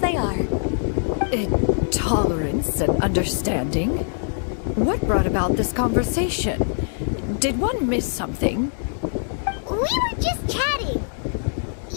are. Tolerance and understanding? What brought about this conversation? Did one miss something? We were just chatting.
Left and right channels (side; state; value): right; silent; digital silence